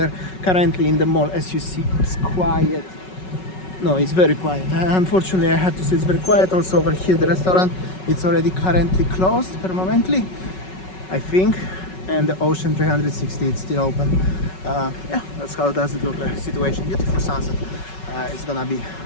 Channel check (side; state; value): right; late; 5.4 ms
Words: Currently in the mall, as you see, it's quiet. No, it's very quiet. Unfortunately, I had to say it's very quiet. Also over here, the restaurant, it's already currently closed permanently, I think, and the Ocean 360, it's still open. Yeah, that's how does it look like. Situation, beautiful sunset. It's gonna be